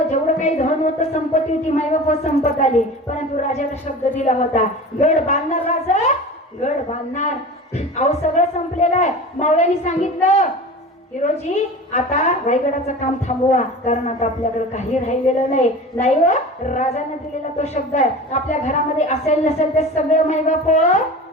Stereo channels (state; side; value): normal; both; correlation 0.35